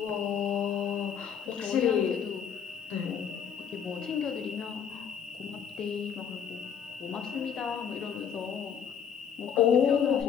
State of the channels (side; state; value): right; quieter; 7.8 dB